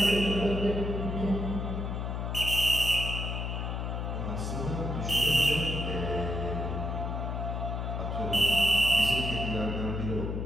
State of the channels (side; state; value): left; noise; hum, 3 dB below the sound